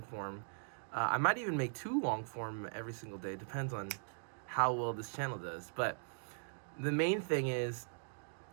form. I might even make 2 long form every single day, depends on how well this channel does. But the main thing is,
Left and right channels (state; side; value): silent; left; digital silence